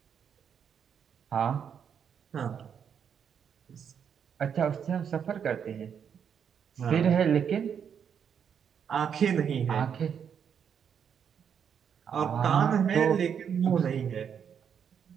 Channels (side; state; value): left; quieter; 7.7 dB